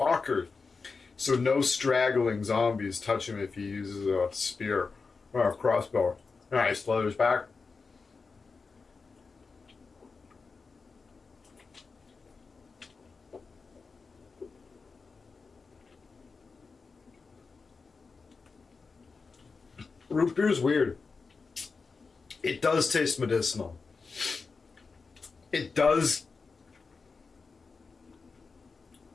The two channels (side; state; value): right; quieter; 4.6 dB